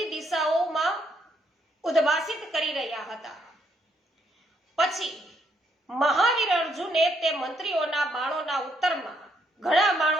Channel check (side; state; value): both; normal; correlation 0.73